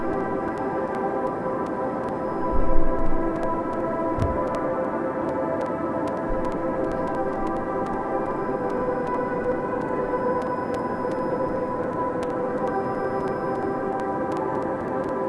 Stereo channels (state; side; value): identical; both; correlation 1.00